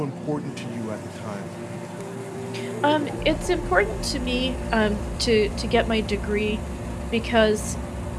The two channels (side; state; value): both; identical; correlation 1.00